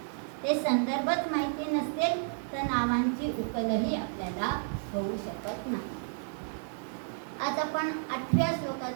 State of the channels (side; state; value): left; silent; 57 dB below the other